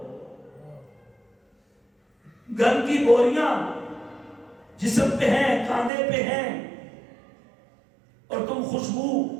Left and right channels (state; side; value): drops out; left; at 5.9 s